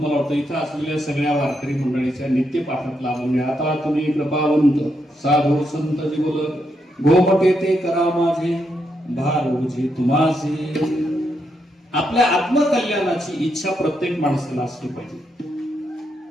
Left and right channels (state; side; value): normal; both; correlation 0.81